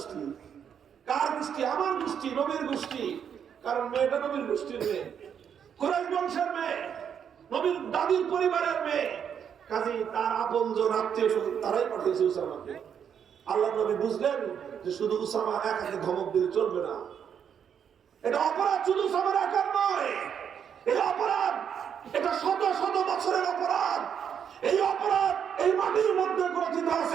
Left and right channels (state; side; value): quieter; left; 8.0 dB